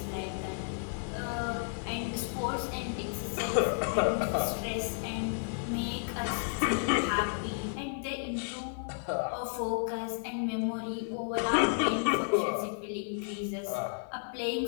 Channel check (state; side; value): silent; right; 56 dB below the other